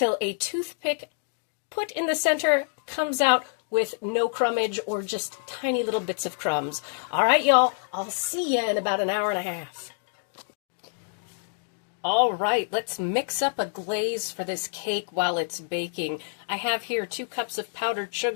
a toothpick put in the center comes out with no crumbage or just tiny little bits of crumbs. All right, y'all, I'll see you in about an hour and a half. All right, let's mix up a glaze for this cake while it's baking. I have here 2 cups of powdered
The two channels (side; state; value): right; silent; digital silence